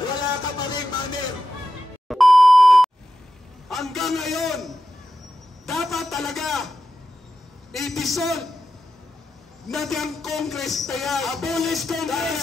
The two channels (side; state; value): both; normal; correlation 0.90